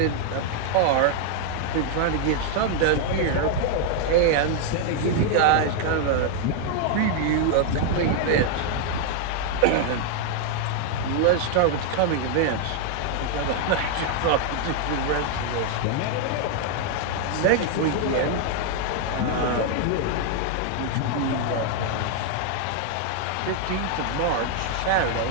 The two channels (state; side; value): different; both; correlation 0.00